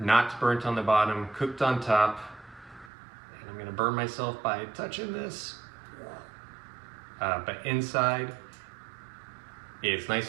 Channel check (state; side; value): drops out; left; at 2.9 s